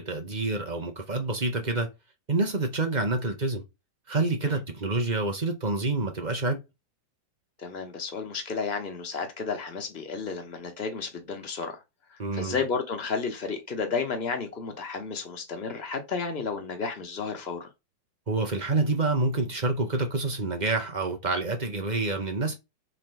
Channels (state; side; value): late; left; 2.1 ms